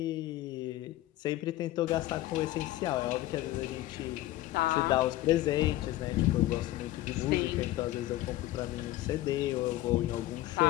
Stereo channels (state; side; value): quieter; right; 15.8 dB